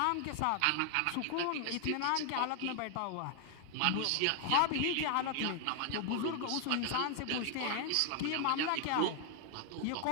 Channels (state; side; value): different; both; correlation 0.00